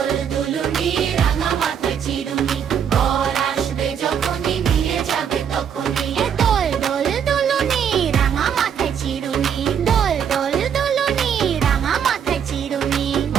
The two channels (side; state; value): left; quieter; 8.1 dB